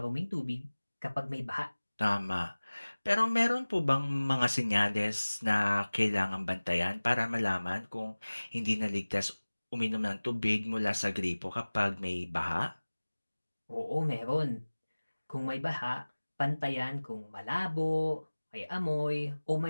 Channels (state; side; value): inverted; both; correlation -1.00